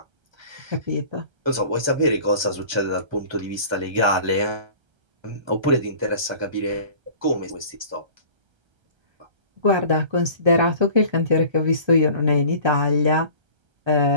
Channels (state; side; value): late; left; 1.3 ms